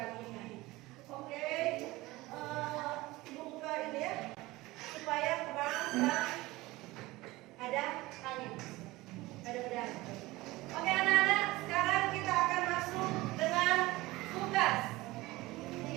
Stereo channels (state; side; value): quieter; left; 19.8 dB